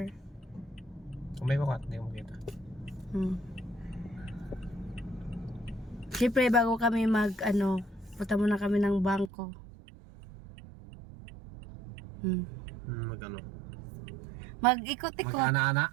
May bakat, hindi ko makita. Siyempre, bago kami punta muna kami ng bangko. Mag-ano? Mag-ikot-ikot. Mag-ana-ana.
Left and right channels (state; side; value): drops out; left; at 9.3 s